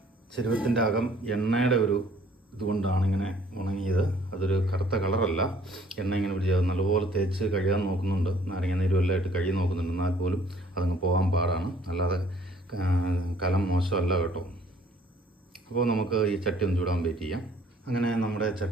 ചെരുവത്തിൻ്റെ അകം എണ്ണയുടെ ഒരു ഇതുകൊണ്ടാണ് ഇങ്ങനെ ഉണങ്ങിയത്. അതൊരു കറുത്ത കളറല്ല, എണ്ണ ഇങ്ങനെ പിടിച്ചത്. നല്ലപോലെ തേച്ച് കഴുകാൻ നോക്കുന്നുണ്ട്, നാരങ്ങ നീരും എല്ലാം ഇട്ട് കഴുകി നോക്കുന്നുണ്ട്. എന്നാൽ പോലും അതങ്ങ് പോകാൻ പാടാണ്. അല്ലാതെ കലം മോശമല്ല കേട്ടോ. അപ്പോൾ നമുക്ക് ഈ ചട്ടി ഒന്ന് ചൂടാൻ വെയിറ്റ് ചെയ്യാം. അങ്ങനെ നമ്മുടെ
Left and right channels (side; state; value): both; normal; correlation 0.58